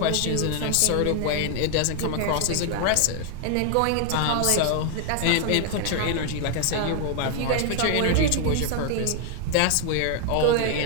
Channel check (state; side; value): different; both; correlation 0.00